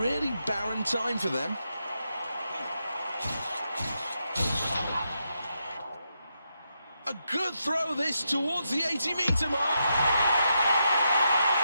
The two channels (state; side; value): inverted; both; correlation -0.83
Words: barren time for them. A good throw this towards the 80-meter mark.